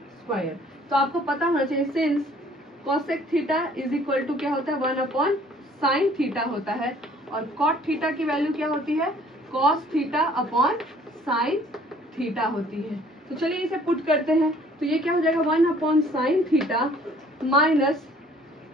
स्क्वायर। तो आपको पता होना चाहिए since cosec theta is equal to क्या होता है 1 अपॉन साइन थीटा होता है, और cot थीटा की वैल्यू क्या होती है cos theta upon sine theta होती है। तो चलिए इसे पुट करते हैं, तो ये क्या हो जाएगा 1 upon sine theta minus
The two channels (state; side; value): normal; both; correlation 0.56